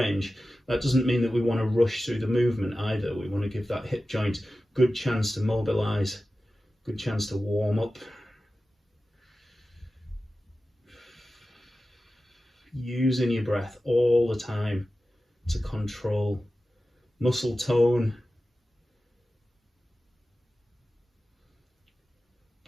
that doesn't mean that we want to rush through the movement either. We want to give that hip joint good chance to mobilize, good chance to warm up. Using your breath all the time to control muscle tone,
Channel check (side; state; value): both; normal; correlation 0.94